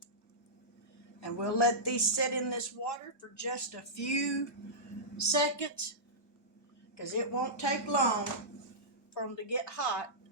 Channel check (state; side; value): normal; both; correlation -0.15